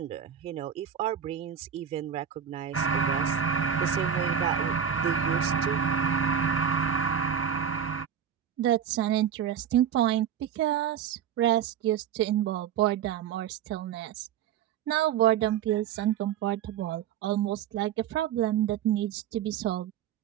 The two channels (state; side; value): quieter; left; 8.8 dB